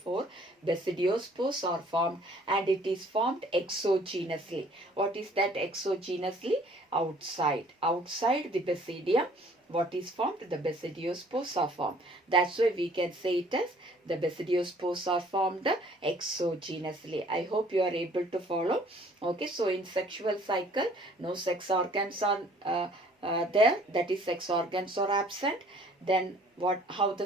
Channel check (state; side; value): normal; both; correlation 0.56